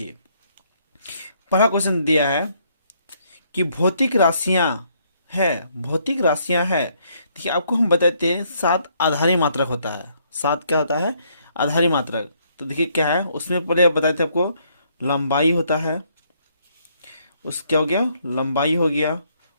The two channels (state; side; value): inverted; both; correlation -0.70